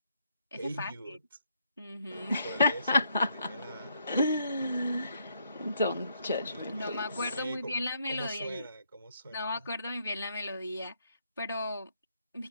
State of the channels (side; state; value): both; inverted; correlation -0.74